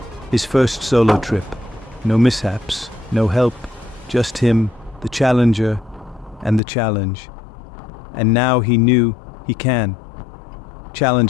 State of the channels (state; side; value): drops out; right; at 6.6 s